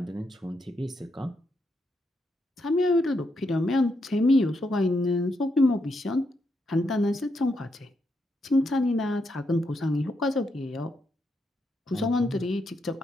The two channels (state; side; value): normal; both; correlation 0.80